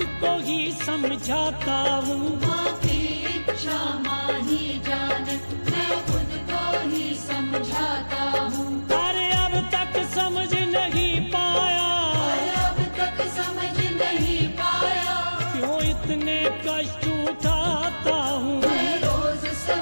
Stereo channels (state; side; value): inverted; both; correlation -1.00